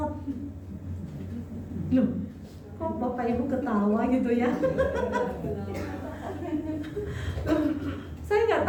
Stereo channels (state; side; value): identical; both; correlation 1.00